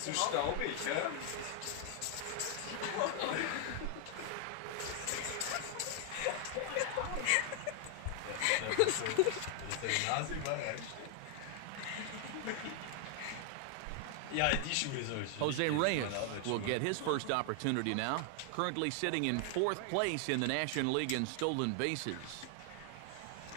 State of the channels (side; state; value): both; different; correlation 0.00